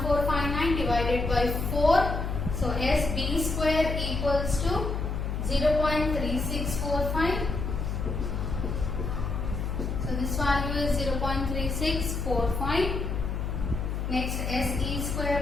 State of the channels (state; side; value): noise; left; hum, 2 dB below the sound